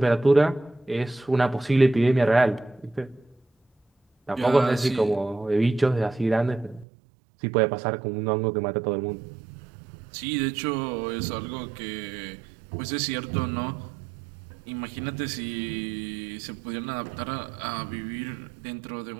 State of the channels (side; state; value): left; drops out; at 6.9 s